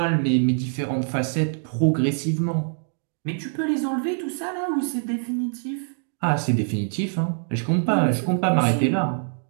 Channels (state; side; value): silent; left; digital silence